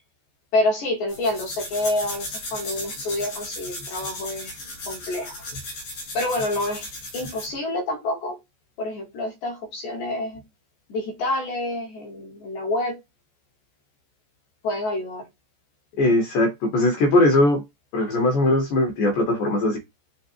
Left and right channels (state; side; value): late; right; 14 ms